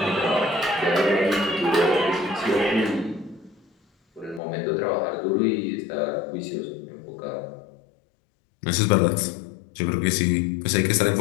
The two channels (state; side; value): drops out; right; at 4.4 s